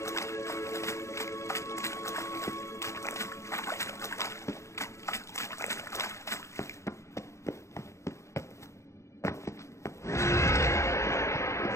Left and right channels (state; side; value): late; right; 0.14 ms